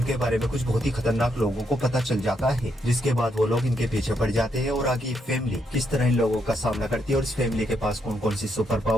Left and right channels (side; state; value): both; normal; correlation 0.78